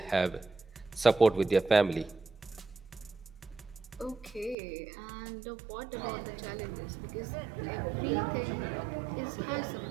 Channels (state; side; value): drops out; left; at 4.5 s